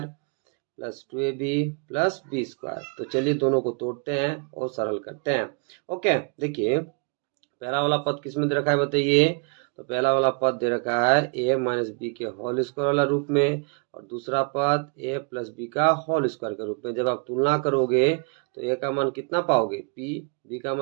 plus 2ab plus B square. तो चलिए दोनों को तोड़ते हैं और सरल करते हैं। ओके, देखिए पहला वाला पद किस में दे रखा है बताइए, तो पहला वाला पद दे रखा है ए माइनस बी के होल स्क्वायर वाला रूप में, और दूसरा पद ए प्लस बी का होल स्क्वायर के रूप में। जब आप तुलना करोगे तो ए का मान कितना पाओगे पी, बी का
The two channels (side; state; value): left; quieter; 36.9 dB